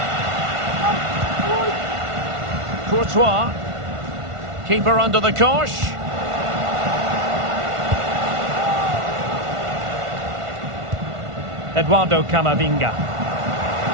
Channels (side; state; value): left; late; 1.5 ms